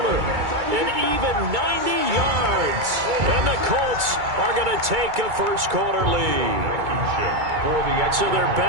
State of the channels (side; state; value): left; late; 2.3 ms